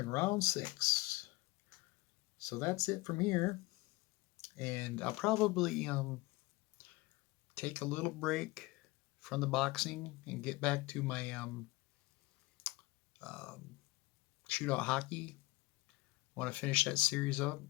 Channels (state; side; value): quieter; right; 21.3 dB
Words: round 6. So that's it from here. And I'll probably take a little break from the boxing and get back to my shootout hockey. Want to finish that series up.